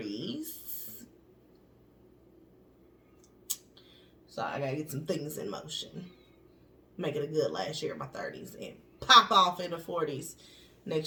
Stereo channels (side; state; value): both; identical; correlation 1.00